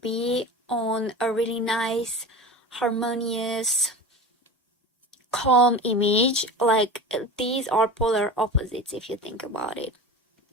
be on a really nice, harmonious, calm image. Like, these are polar opposites if you think about it.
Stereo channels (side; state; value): both; normal; correlation 0.31